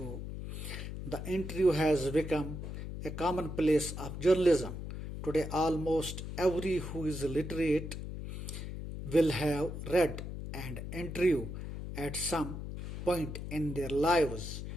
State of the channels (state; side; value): noise; left; hum, 7 dB below the sound